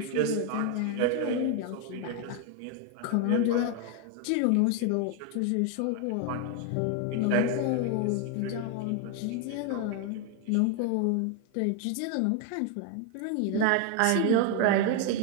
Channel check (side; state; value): both; different; correlation 0.01